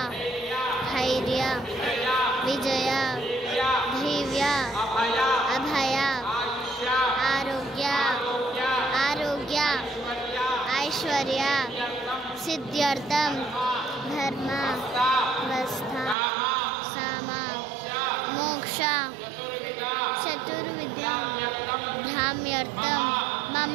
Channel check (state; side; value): drops out; left; at 16.2 s